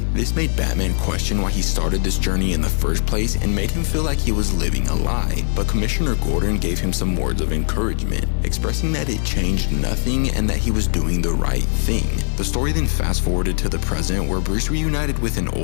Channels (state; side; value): silent; right; digital silence